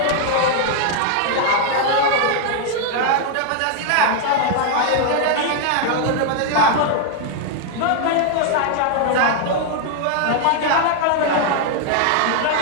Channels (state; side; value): different; both; correlation 0.00